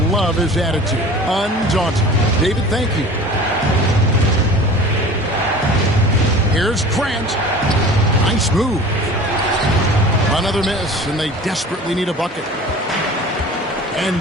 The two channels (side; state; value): both; normal; correlation 0.41